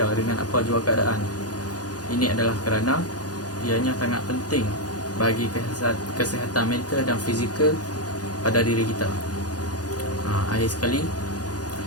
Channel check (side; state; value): right; late; 0.68 ms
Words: dengan apa jua keadaan. Ini adalah kerana ianya sangat penting bagi kesihatan mental dan fizikal pada diri kita. Akhir sekali,